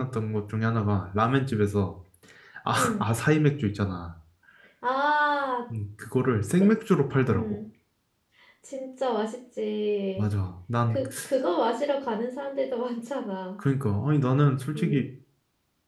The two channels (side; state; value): both; identical; correlation 1.00